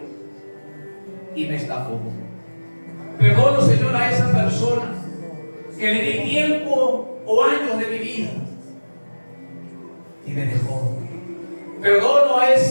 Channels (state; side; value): inverted; both; correlation -1.00